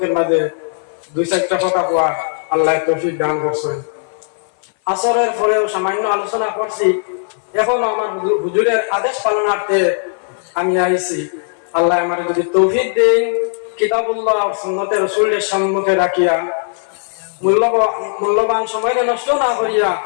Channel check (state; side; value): silent; right; 58 dB below the other